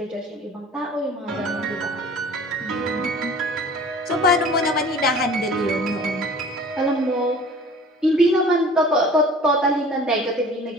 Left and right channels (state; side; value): normal; both; correlation 0.45